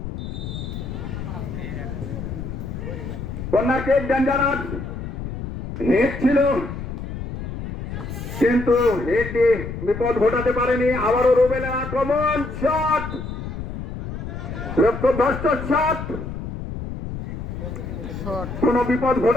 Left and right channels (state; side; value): noise; left; rumble, 7 dB below the sound